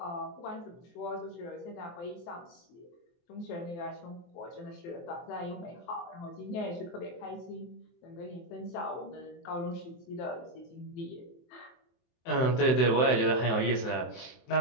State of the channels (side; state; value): right; late; 23 ms